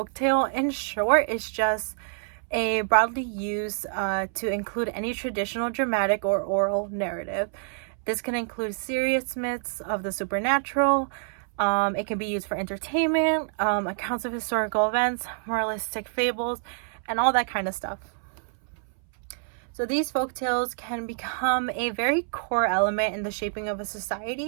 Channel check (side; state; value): left; silent; 60 dB below the other